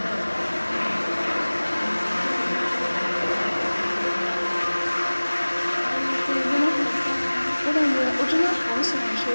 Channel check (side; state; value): both; inverted; correlation -1.00